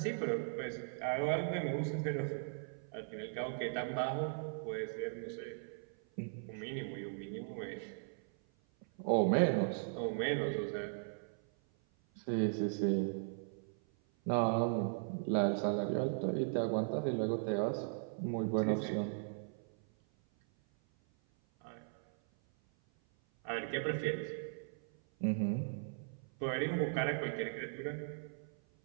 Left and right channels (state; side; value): silent; left; 52 dB below the other